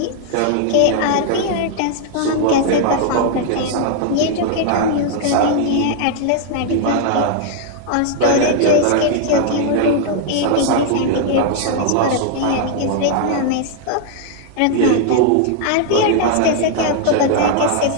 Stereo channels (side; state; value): both; different; correlation 0.00